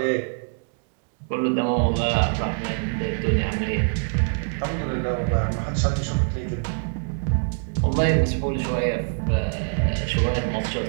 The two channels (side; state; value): left; silent; digital silence